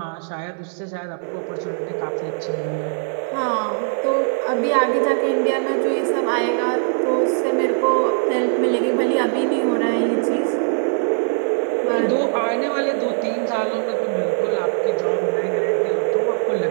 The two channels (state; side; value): silent; left; 58 dB below the other